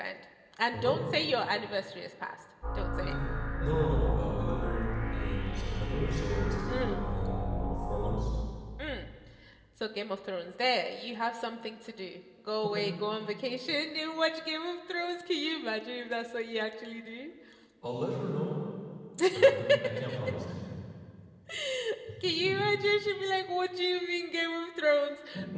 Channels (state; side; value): identical; both; correlation 1.00